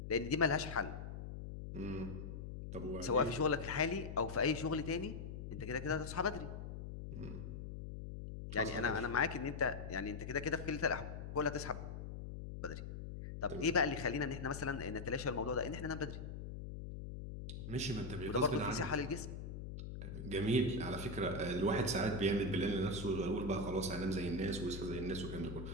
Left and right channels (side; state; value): left; noise; hum, 8 dB below the sound